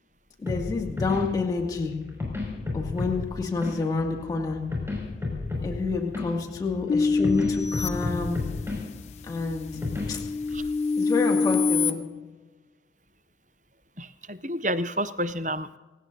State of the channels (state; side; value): quieter; right; 3.3 dB